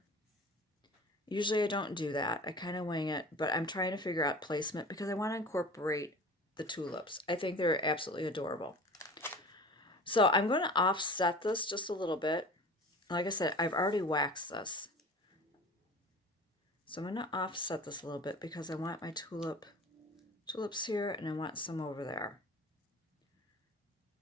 Usually I don't do that. I kind of wing it, but I'm trying to figure out placement because I want to incorporate the tulips. I think they're absolutely adorable. So I'm going to offset this just a little bit. Like I said, I've already waxed this. So I'm going to offset this a little bit because I want my tulips here and I want some over there.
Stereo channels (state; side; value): normal; both; correlation 0.39